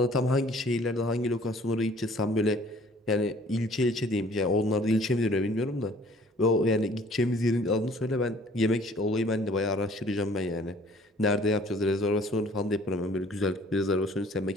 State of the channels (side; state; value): both; normal; correlation 0.55